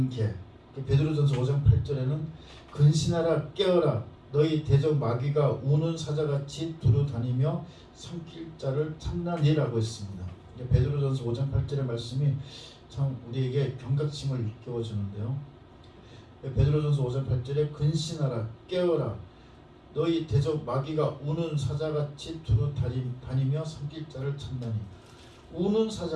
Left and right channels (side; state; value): both; identical; correlation 1.00